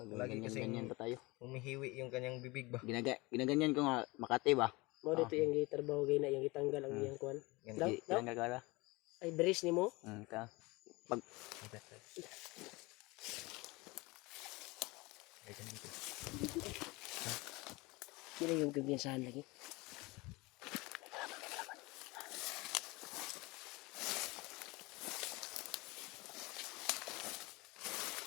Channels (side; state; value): right; quieter; 23.7 dB